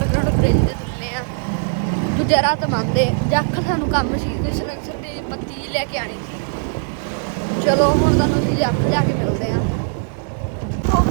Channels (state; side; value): silent; left; 63 dB below the other